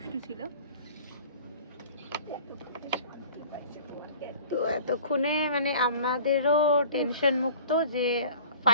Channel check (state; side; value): inverted; both; correlation -0.45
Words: ছিল। তো এতক্ষণে মানে আমাদেরও টেনশন মুক্ত যে